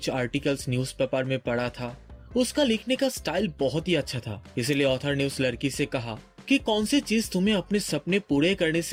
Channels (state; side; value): identical; both; correlation 1.00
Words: आर्टिकल्स न्यूज़पेपर में पढ़ा था। उसका लिखने का स्टाइल बहुत ही अच्छा था, इसलिए ऑथर ने उस लड़की से कहा कि कौन सी चीज तुम्हें अपने सपने पूरे करने